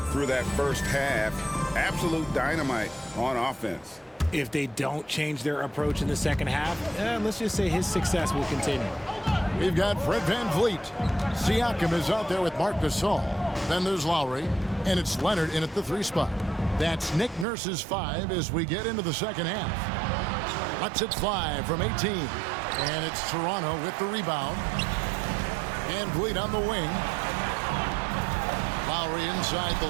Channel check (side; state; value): left; drops out; at 17.4 s